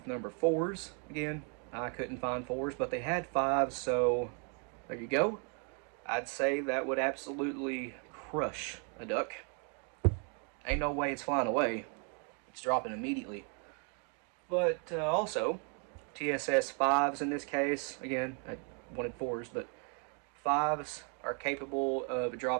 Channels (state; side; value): quieter; left; 39.9 dB